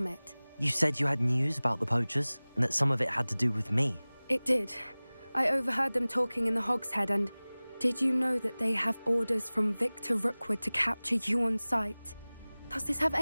it. You said you had news about the poachers, and that some of it had to do with me. It did. I overheard them talking in the Hogshead, and did you know that they have orders from Victor Rookwood to capture you on sight? Does this have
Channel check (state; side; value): inverted; both; correlation -0.99